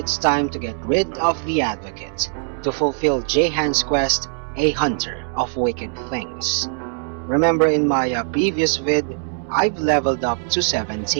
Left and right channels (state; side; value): silent; left; digital silence